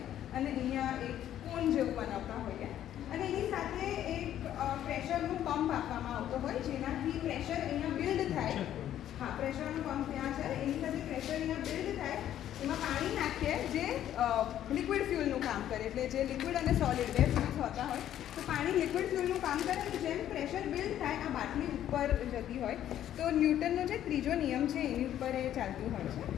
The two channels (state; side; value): quieter; right; 11.4 dB